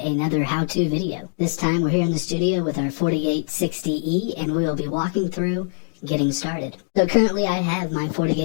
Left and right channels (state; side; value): silent; right; digital silence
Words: how-to video. This time we're here in the studio with our FortiGate 60E, and we will be walking through getting started. So currently I have my